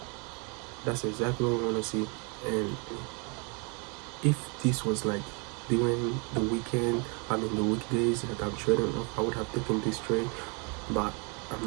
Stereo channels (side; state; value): left; quieter; 33.7 dB